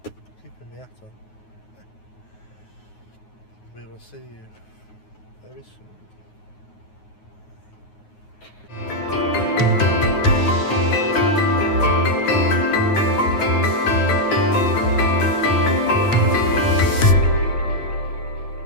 Keeping my hat on. We will see you very soon.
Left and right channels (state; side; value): late; right; 9.5 ms